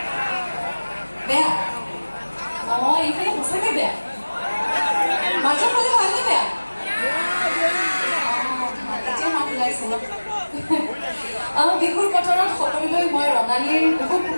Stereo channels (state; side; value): inverted; both; correlation -1.00